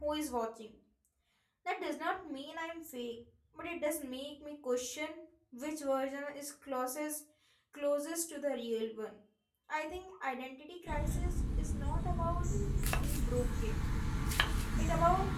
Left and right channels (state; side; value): identical; both; correlation 1.00